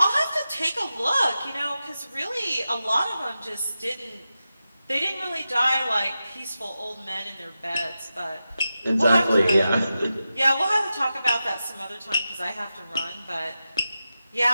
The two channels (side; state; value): both; inverted; correlation -0.92